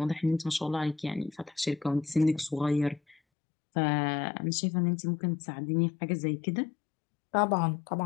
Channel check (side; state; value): right; drops out; at 3.2 s